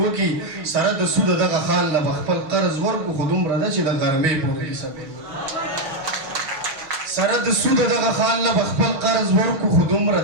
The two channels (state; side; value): late; left; 6.3 ms